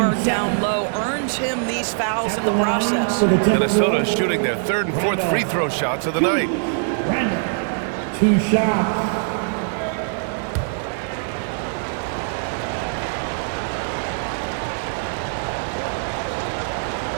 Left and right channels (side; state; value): left; silent; digital silence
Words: down low, earns him these fouls in the process. Minnesota shooting their 3rd and 4th free throw shots of the night. Randall, 2 shots.